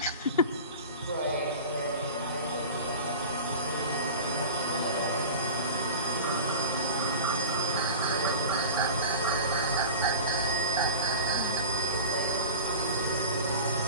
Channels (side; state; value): both; inverted; correlation -0.35